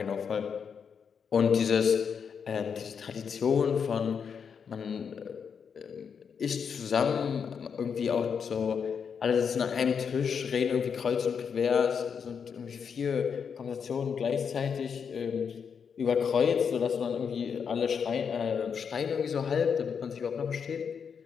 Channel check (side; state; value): right; quieter; 6.7 dB